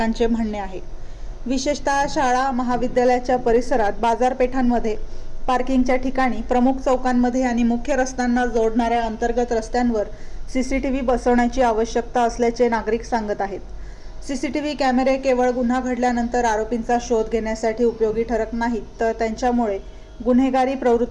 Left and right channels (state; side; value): identical; both; correlation 1.00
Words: म्हणणे आहे. विशेषतः शाळा, महाविद्यालयाच्या परिसरात, बाजारपेठांमध्ये, पार्किंगच्या ठिकाणी, प्रमुख चौकांमध्ये आणि मुख्य रस्त्यांना जोडणाऱ्या अंतर्गत रस्त्यांवर सीसीटीव्ही बसवण्याची आवश्यकता असल्याचे नागरिक सांगत आहेत. सीसीटीव्ही कॅमेरे केवळ गुन्हा घडल्यानंतर आरोपींचा शोध घेण्यासाठी उपयोगी ठरत नाहीत, तर त्यांच्यामुळे गुन्हेगारी